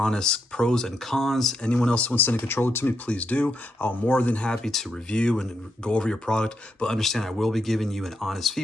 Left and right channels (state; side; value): normal; both; correlation 0.80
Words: pros and cons. Anyone else who wants to send a controller to me, please do. I'm more than happy to review and go over your product, but understand I will be giving you an honest